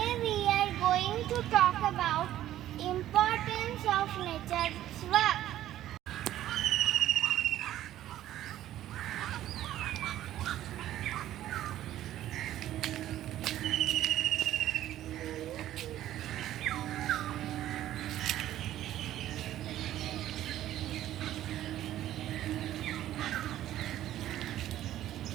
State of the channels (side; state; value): left; quieter; 13.0 dB